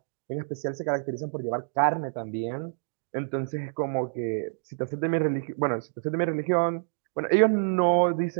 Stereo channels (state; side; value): silent; left; digital silence